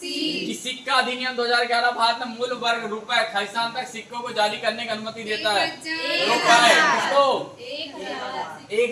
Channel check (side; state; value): both; identical; correlation 1.00